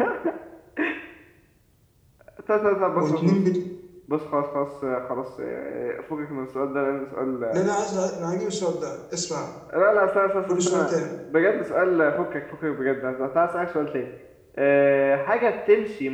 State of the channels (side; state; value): both; identical; correlation 1.00